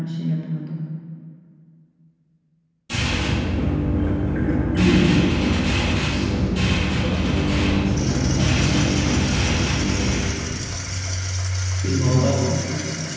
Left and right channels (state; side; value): identical; both; correlation 1.00